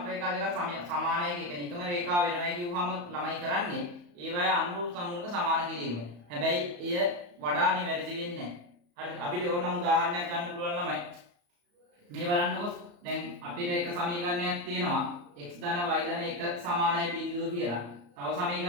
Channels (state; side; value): late; left; 34 ms